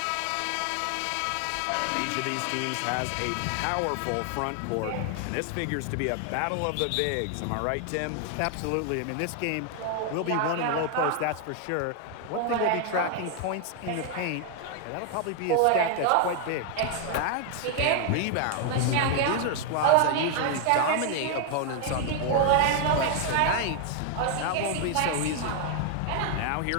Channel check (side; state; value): both; different; correlation 0.00